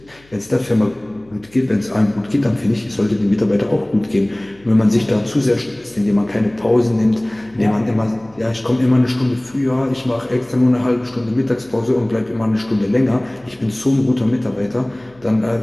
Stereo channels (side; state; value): left; noise; hum, 29 dB below the sound